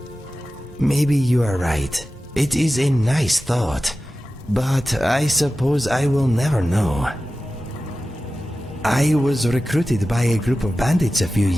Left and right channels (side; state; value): both; normal; correlation 0.94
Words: Maybe you are right. It is a nice thought, but I suppose I will never know. I was recruited by a group of bandits a few